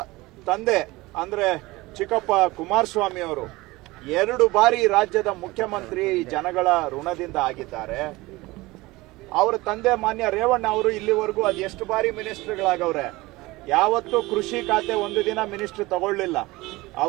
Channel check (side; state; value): left; quieter; 20.8 dB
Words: ತಂದೆ ಅಂದ್ರೆ ಚಿಕ್ಕಪ್ಪ ಕುಮಾರಸ್ವಾಮಿ ಅವರು 2 ಬಾರಿ ರಾಜ್ಯದ ಮುಖ್ಯಮಂತ್ರಿ ಜನಗಳ ಋಣದಿಂದ ಆಗಿದ್ದಾರೆ. ಅವರ ತಂದೆ ಮಾನ್ಯ ರೇವಣ್ಣ ಅವರು ಇಲ್ಲಿವರೆಗೂ ಅದು ಎಷ್ಟು ಬಾರಿ ಮಿನಿಸ್ಟರ್ಗಳಾಗವ್ರೆ, ಯಾವತ್ತೂ ಕೃಷಿ ಖಾತೆ ಒಂದು ದಿನ ಮಿನಿಸ್ಟರ್ ತಗೊಳ್ಳಿಲ್ಲ.